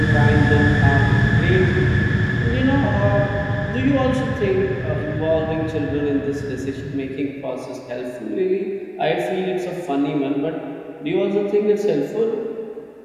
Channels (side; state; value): both; identical; correlation 1.00